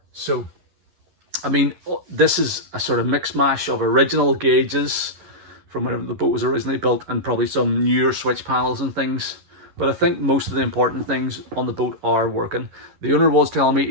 So, I mean, this is a sort of mix mash of original gauges from whenever the boat was originally built, and probably some newer switch panels and things. But I think most of the important things on the boat are working. The owner was telling me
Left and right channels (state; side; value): late; left; 11 ms